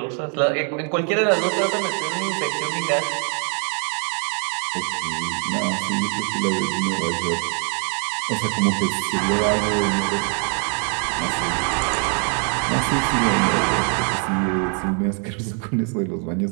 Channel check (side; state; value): left; quieter; 39.9 dB